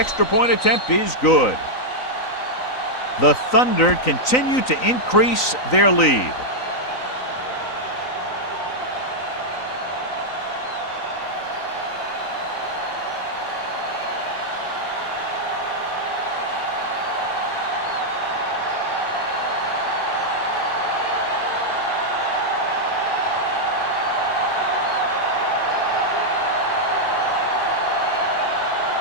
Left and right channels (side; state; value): right; late; 3.9 ms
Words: point attempt is good. The Thunder continue to increase their lead.